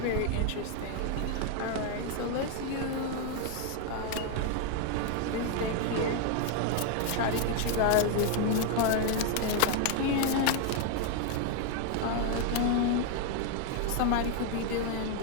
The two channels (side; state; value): both; different; correlation 0.00